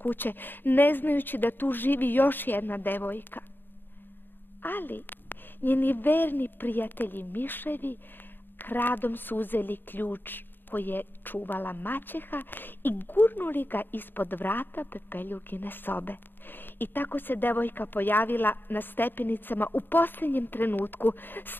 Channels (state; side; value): late; right; 0.094 ms